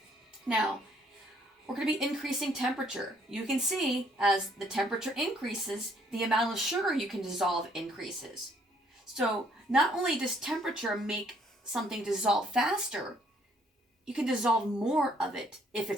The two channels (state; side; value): normal; both; correlation 0.65